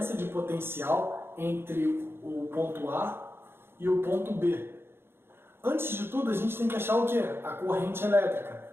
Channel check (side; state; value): left; late; 0.11 ms